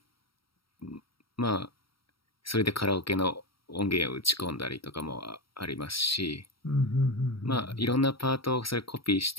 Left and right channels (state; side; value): late; right; 0.75 ms